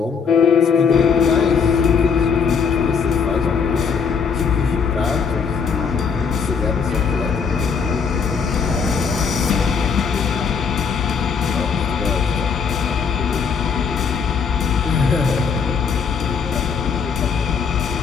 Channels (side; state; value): right; quieter; 6.0 dB